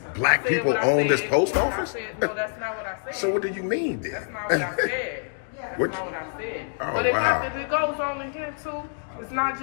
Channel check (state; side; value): silent; right; digital silence